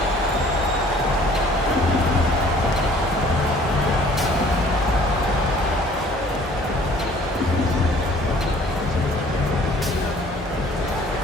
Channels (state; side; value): normal; both; correlation 0.55